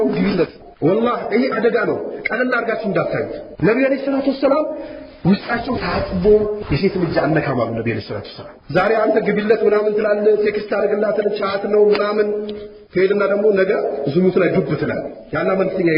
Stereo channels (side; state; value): both; identical; correlation 1.00